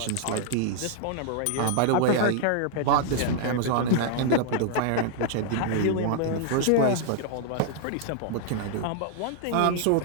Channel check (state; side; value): different; both; correlation 0.00